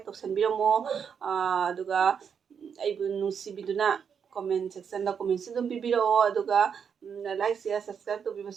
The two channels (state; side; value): quieter; left; 7.0 dB